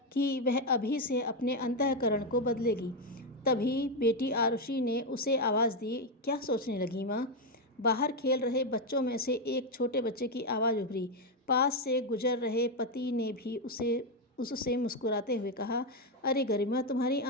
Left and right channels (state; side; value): normal; both; correlation 0.06